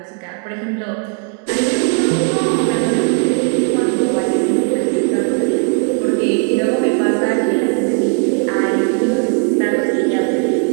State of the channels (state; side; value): quieter; left; 38.0 dB